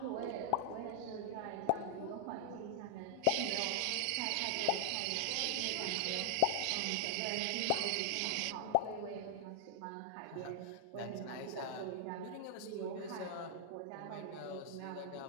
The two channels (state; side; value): different; both; correlation 0.00